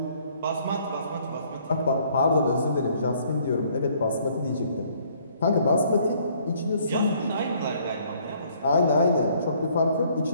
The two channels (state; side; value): inverted; both; correlation -0.62